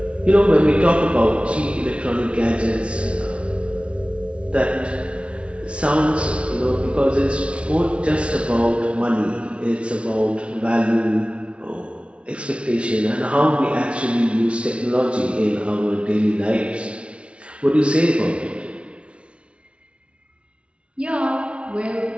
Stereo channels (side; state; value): left; late; 0.060 ms